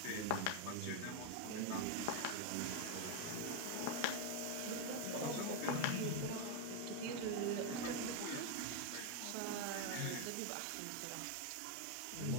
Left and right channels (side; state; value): both; different; correlation 0.01